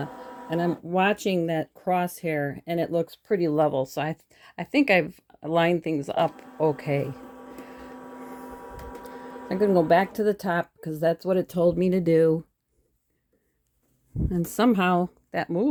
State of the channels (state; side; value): identical; both; correlation 1.00